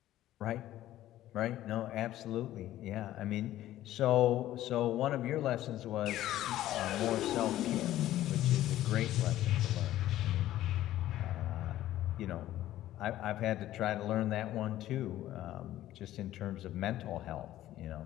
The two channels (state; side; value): quieter; right; 13.9 dB